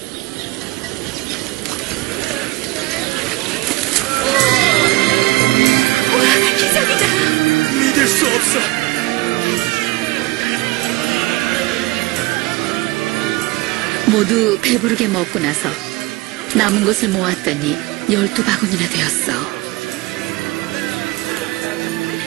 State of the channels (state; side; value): quieter; left; 21.2 dB